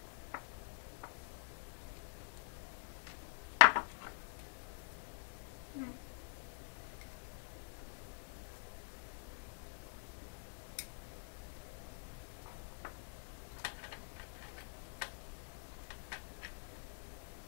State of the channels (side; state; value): right; silent; digital silence